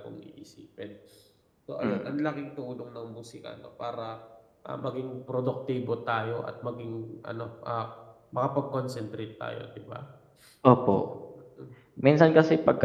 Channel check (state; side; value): identical; both; correlation 1.00